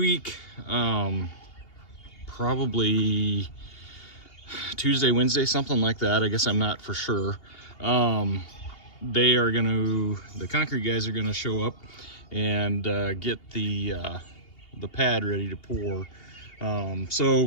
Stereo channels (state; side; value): late; right; 2.8 ms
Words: probably Tuesday, Wednesday, something like that. I guess I'm not for sure. The concrete guys are gonna show up and get the pad ready to pour. So